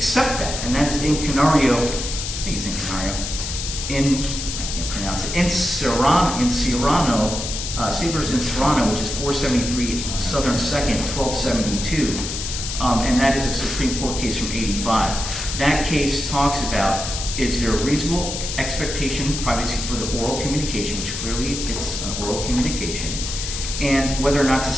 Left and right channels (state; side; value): noise; left; hiss, 5 dB below the sound